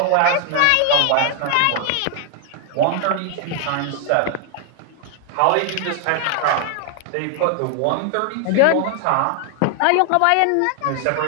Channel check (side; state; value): both; different; correlation 0.00